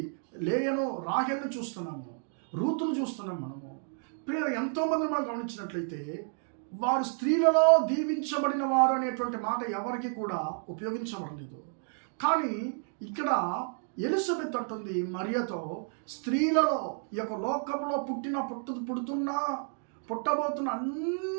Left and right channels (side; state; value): left; silent; 56 dB below the other